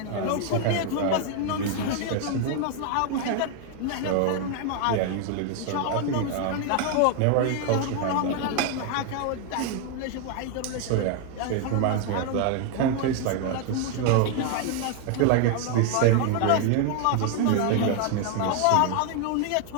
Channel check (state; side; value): different; both; correlation 0.00